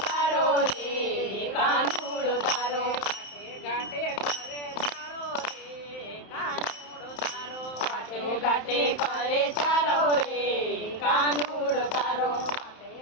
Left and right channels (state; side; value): late; right; 31 ms